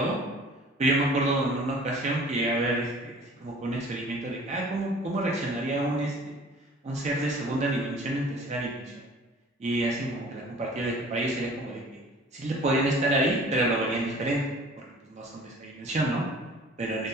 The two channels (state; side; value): normal; both; correlation 0.48